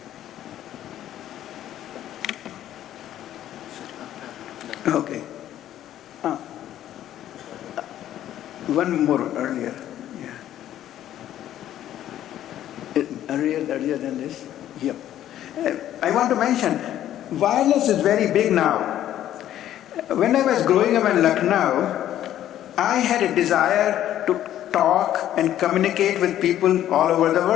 Okay. One more earlier. Yeah. Earlier than this? Yep. I want to mention, wireless is very big now. When I was growing up in Lucknow, I had a desire to talk and communicate with people all over the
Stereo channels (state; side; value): quieter; right; 12.0 dB